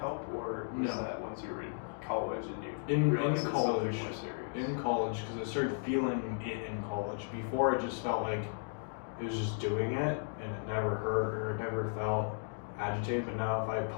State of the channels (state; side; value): silent; right; digital silence